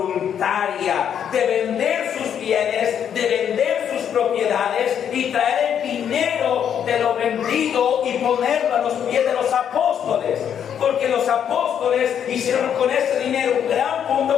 de vender sus bienes, de vender sus propiedades y traer el dinero de lo vendido y ponerlo a los pies de los apóstoles. Porque los apóstoles hicieron con ese dinero un gran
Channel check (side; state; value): right; quieter; 8.7 dB